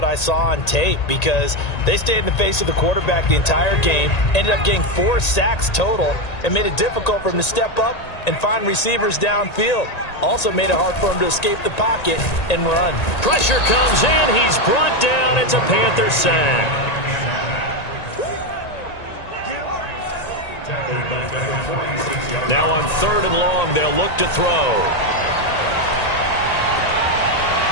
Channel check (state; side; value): late; right; 1.9 ms